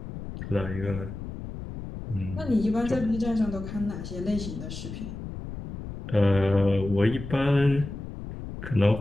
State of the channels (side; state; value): left; noise; rumble, 9 dB below the sound